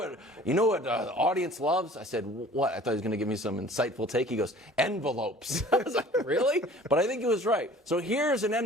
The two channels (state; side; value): normal; both; correlation 0.48